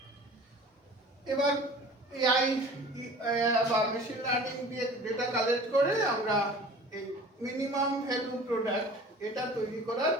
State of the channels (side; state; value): both; normal; correlation 0.43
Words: এবার এআই বা মেশিন লার্নিং দিয়ে ডেটা কালেক্ট করে আমরা এই মিনিমাম ভ্যালু প্রোডাক্ট এটা তৈরি করার